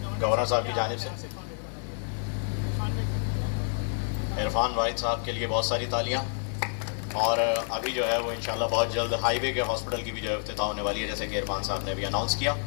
گورنر صاحب کی جانب سے. عرفان واحد صاحب کے لیے بہت ساری تالیاں. اور ابھی جو ہے وہ انشاءاللہ بہت جلد ہائی وے کے ہاسپٹل کی بھی جو ہے افتتاح ہونے والی ہے, جیسے کہ عرفان صاحب نے ابھی اناؤنس کیا.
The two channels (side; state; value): right; silent; 56 dB below the other